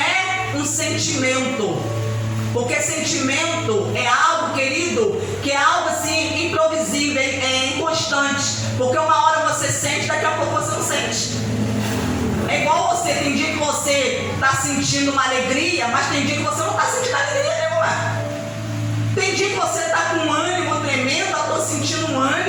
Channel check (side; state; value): both; identical; correlation 1.00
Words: um sentimento. Porque sentimento é algo, querido, que é algo assim improvisível, é inconstante. Porque uma hora você sente, daqui a pouco você não sente. É igual você, tem dia que você está sentindo uma alegria, mas tem dia que você não está sentindo alegria nenhuma. Tem dia que você está com um ânimo tremendo, eu estou sentindo um